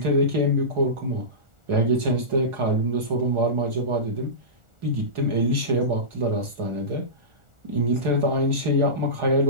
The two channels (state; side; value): late; left; 1.4 ms